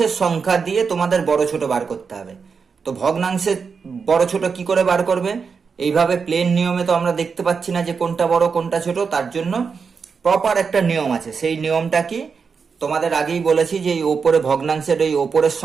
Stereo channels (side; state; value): left; quieter; 5.6 dB